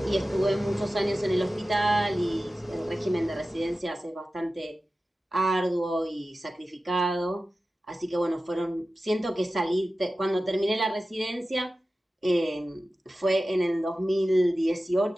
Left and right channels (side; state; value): both; normal; correlation 0.94